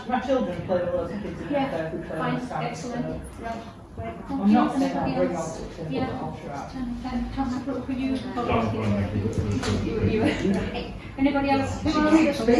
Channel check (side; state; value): both; identical; correlation 1.00